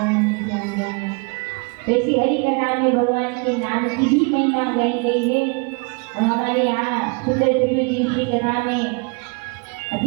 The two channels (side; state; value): left; quieter; 32.7 dB